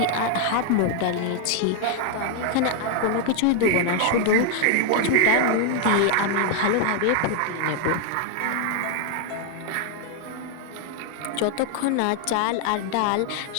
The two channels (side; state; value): both; different; correlation 0.00